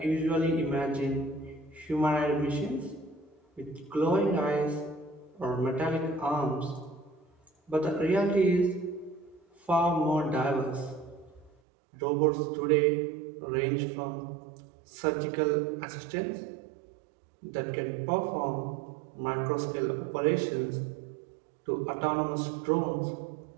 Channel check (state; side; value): drops out; left; at 11.5 s